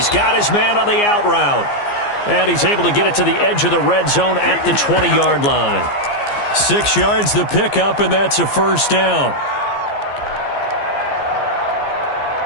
got his man on the out route. And he's able to get it to the edge of the red zone at the 20-yard line. 6 yards the pickup, and that's a 1st down.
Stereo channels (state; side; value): late; right; 15 ms